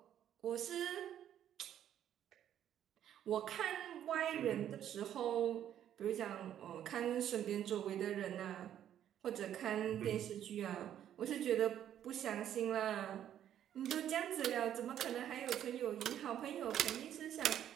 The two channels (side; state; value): left; quieter; 10.6 dB